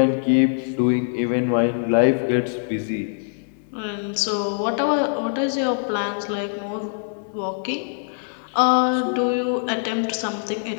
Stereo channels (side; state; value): right; silent; digital silence